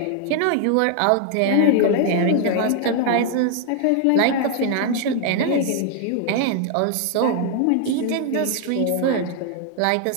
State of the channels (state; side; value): different; both; correlation 0.00